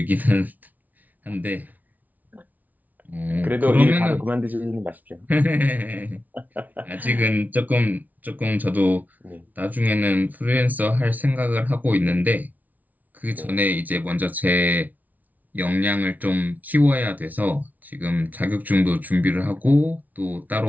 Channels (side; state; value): left; late; 0.077 ms